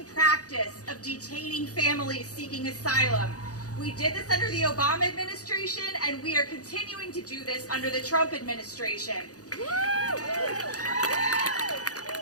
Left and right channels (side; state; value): right; late; 0.67 ms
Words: practice of detaining families seeking asylum. We did this under the Obama administration, and we are continuing to do this under the Trump administration.